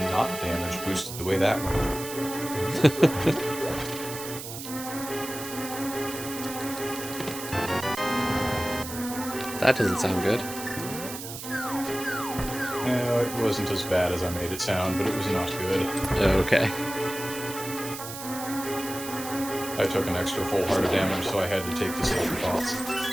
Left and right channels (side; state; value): right; noise; hiss, 9 dB below the sound